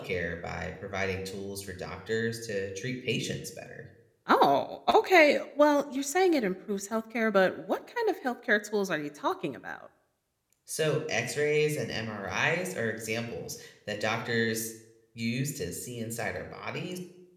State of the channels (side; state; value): both; identical; correlation 1.00